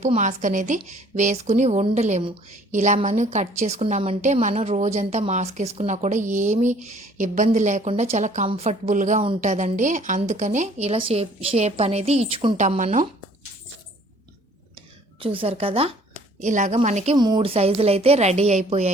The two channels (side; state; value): both; normal; correlation 0.56